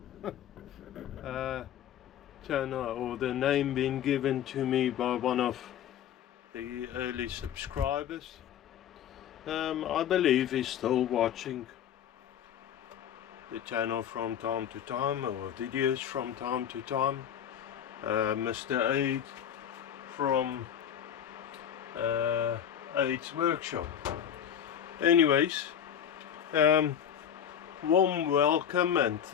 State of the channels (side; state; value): right; quieter; 9.2 dB